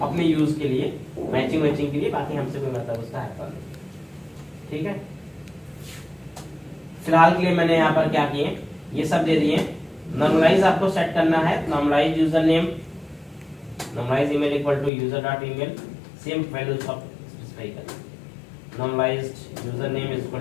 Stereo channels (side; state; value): right; drops out; at 14.9 s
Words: अपने यूज के लिए, मैचिंग के लिए। बाकी हमसे कोई मतलब उसका है। ठीक है, फिलहाल के लिए मैंने यहाँ पर क्या किए, ये सब दे दिए। नॉर्मलाइज आपको सेट करना है, normalise user name, normalise email equal to user dot email, same values of specify करना। Normalised user name is